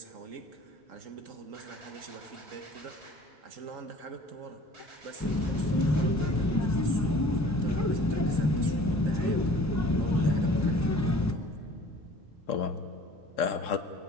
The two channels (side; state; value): both; normal; correlation 0.49